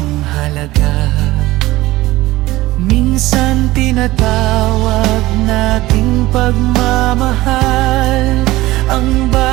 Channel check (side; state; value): left; quieter; 18.2 dB